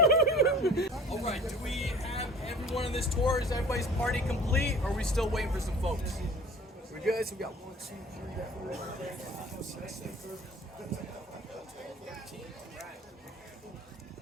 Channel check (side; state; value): both; normal; correlation 0.45